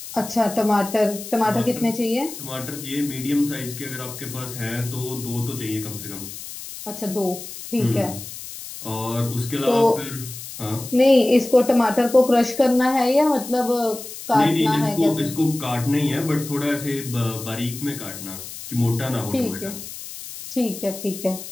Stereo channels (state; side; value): noise; left; hiss, 11 dB below the sound